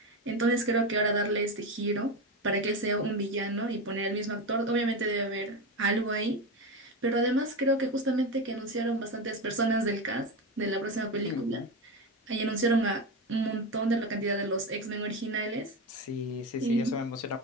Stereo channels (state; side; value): normal; both; correlation 0.18